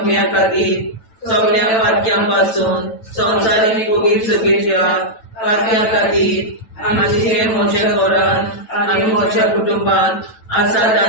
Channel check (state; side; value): late; right; 9.1 ms